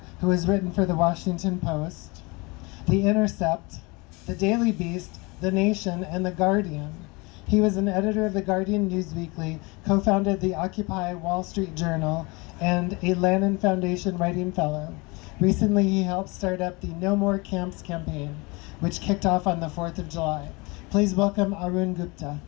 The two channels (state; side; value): quieter; right; 26.5 dB